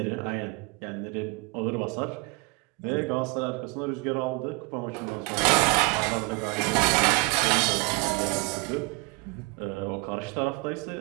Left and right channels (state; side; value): quieter; left; 26.4 dB